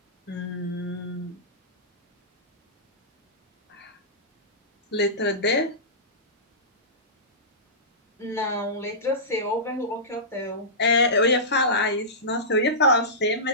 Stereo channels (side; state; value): both; normal; correlation -0.19